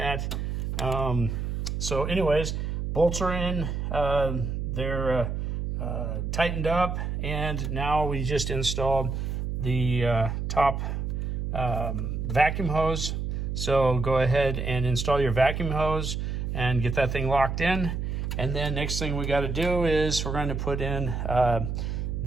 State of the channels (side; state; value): right; noise; hum, 2 dB below the sound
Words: So anyways, bolts are in, they're tightened up, and now we just installed the top vacuum hose. So go ahead and install your vacuum hose and get that thing locked in. And then next thing we got to do is we're going to put in